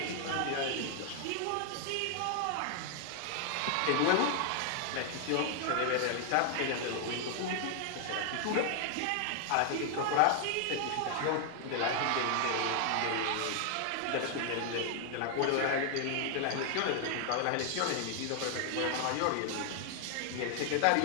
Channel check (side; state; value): both; different; correlation 0.00